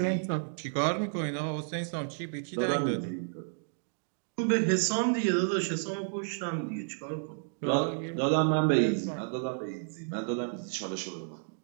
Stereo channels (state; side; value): silent; left; digital silence